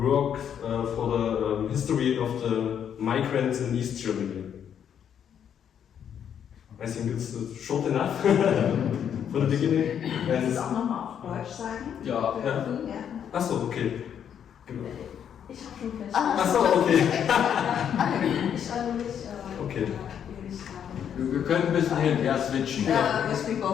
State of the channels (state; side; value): quieter; right; 8.7 dB